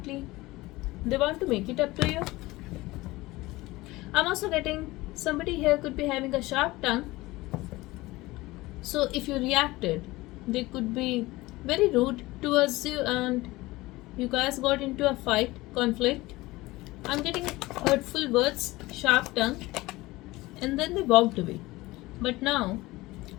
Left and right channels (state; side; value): quieter; right; 19.9 dB